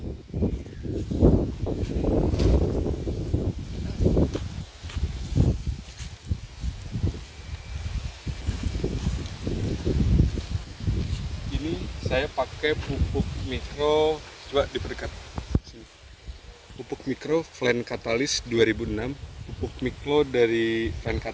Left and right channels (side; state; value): both; identical; correlation 1.00